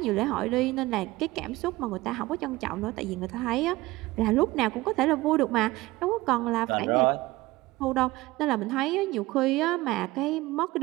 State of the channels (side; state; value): left; quieter; 19.4 dB